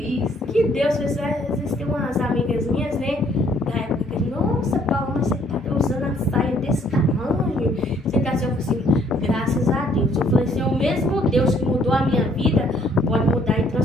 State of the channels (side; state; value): both; normal; correlation 0.64